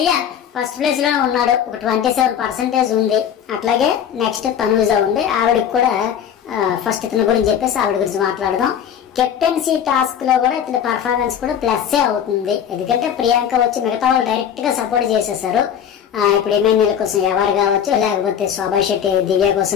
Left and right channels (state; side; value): quieter; right; 8.8 dB